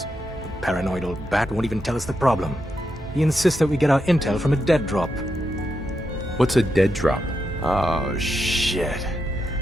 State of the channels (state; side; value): normal; both; correlation 0.84